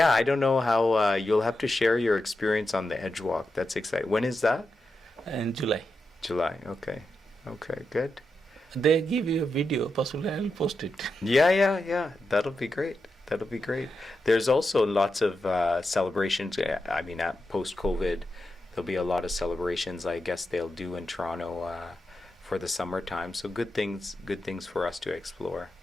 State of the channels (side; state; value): both; normal; correlation 0.88